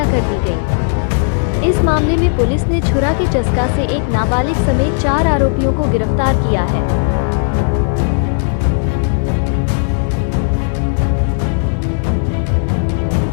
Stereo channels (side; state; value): right; silent; 70 dB below the other